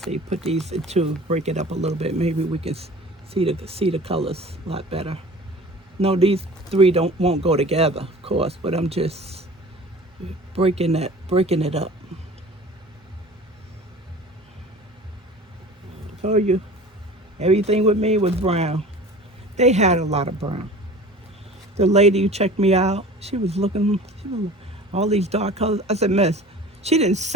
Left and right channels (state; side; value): normal; both; correlation 0.41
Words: Put these into, break it up a little bit. Maybe we can see the colors a lot better. No, these three won't go together, of course, but I'm just breaking it up. Told you, everything with me was brown. They had a lot of brown. The lady who checked me out, she was looking, all these dark colors. I said, Miss, she didn't